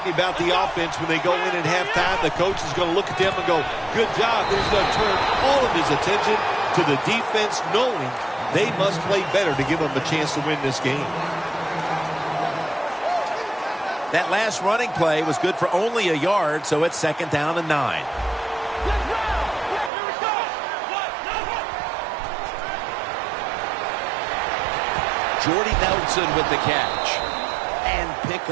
about the offense when they go in at halftime. The coach is going to look at them and go, good job. He's going to turn all of his attention to the defense, knowing they must play better to give them a chance to win this game. That last running play was good for only a yard, so it's second down and 9. Jordy Nelson with the catch. And pick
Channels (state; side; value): drops out; left; at 19.9 s